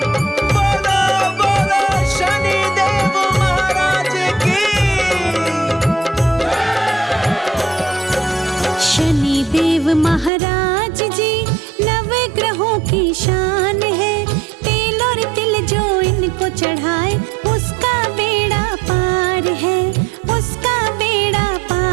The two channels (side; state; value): left; drops out; at 10.3 s